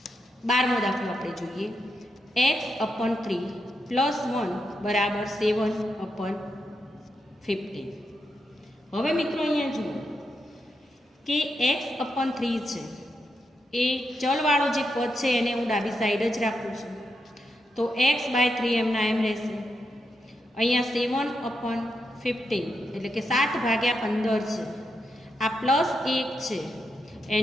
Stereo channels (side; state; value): both; normal; correlation 0.84